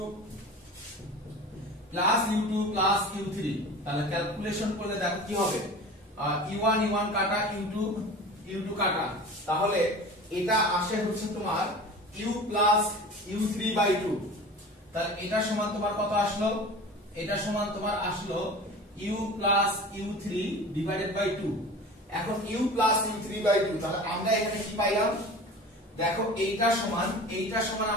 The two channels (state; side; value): normal; both; correlation 0.37